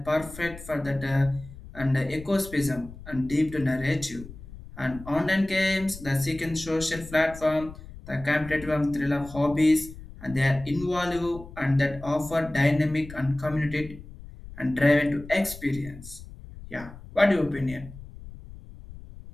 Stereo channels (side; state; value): left; noise; rumble, 15 dB below the sound